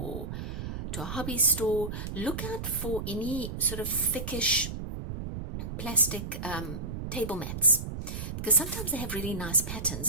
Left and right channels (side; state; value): right; noise; rumble, 6 dB below the sound